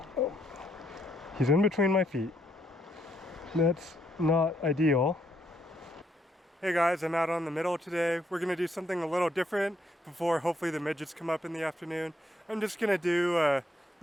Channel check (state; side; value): normal; both; correlation 0.74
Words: nope. He's in between my feet. That's not ideal. Hey guys, I'm out on the middle today. We're gonna do something a little different before hopefully the midgets come up in the afternoon. I'm just gonna do a